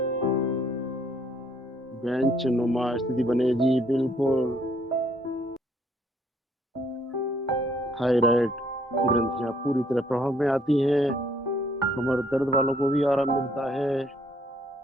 बेंच नुमा स्थिति बने जी बिल्कुल। थायराइड ग्रंथियां पूरी तरह प्रभाव में आती हैं। कमर दर्द वालों को भी आराम मिलता है।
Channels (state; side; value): normal; both; correlation 0.65